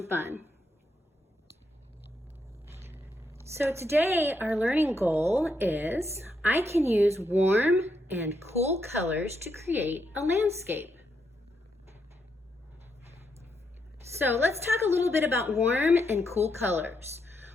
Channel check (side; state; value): both; normal; correlation 0.80